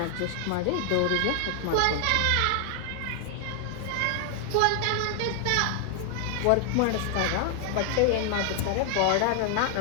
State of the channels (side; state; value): both; different; correlation 0.00